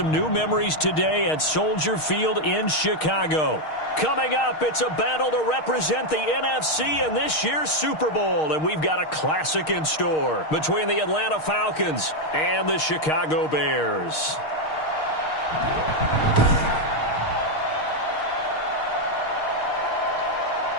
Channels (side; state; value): right; late; 6.4 ms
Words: new memories today at Soldier Field in Chicago. Coming up, it's a battle to represent the NFC in this year's Super Bowl, and we've got a classic in store between the Atlanta Falcons and the Chicago Bears.